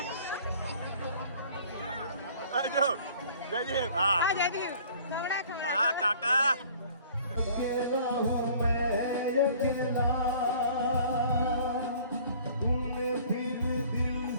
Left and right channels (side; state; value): both; inverted; correlation -0.52